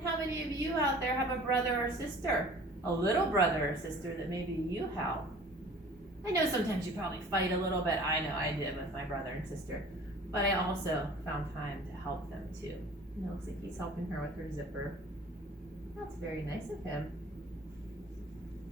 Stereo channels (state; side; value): normal; both; correlation 0.47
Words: how many of you out there have a brother or sister? A little brother or sister that maybe you help? I know sometimes you probably fight a little bit. I know I did with my brother and sister. But I also found time to help them too. And it looks like he's helping her with her zipper. That's very nice of him.